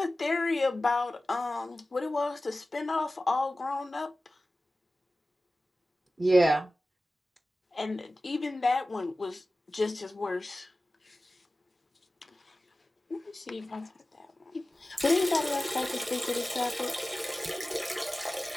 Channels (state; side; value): normal; both; correlation 0.96